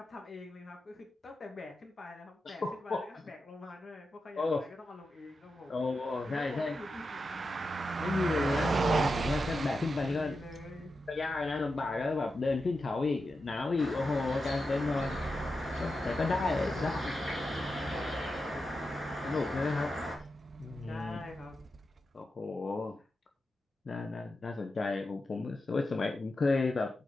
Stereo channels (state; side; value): normal; both; correlation 0.89